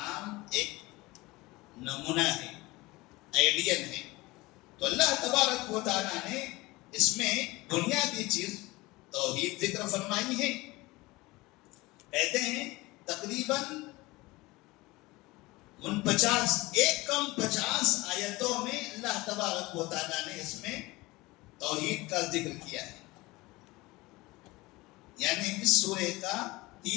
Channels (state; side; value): quieter; right; 21.4 dB